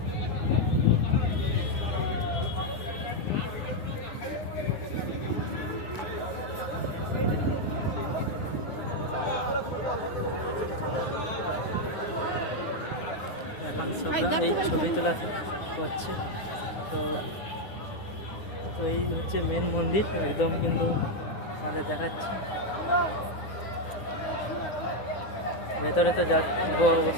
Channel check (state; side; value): late; right; 9.8 ms